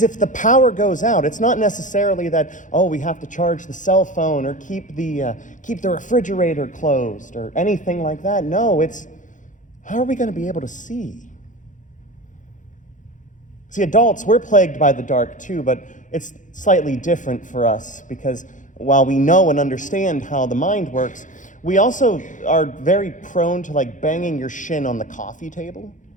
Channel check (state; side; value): late; right; 0.37 ms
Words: if the power goes out, it's not necessarily that, we have to charge the cell phone or keep the refrigerator closed or anything like that. No, it's, how are we going to be able to see? See, adults, we're plagued by the dark too, but it's slightly different for us, because while we know and understand how the mind works, we also are very prone to banging your shin on the coffee table.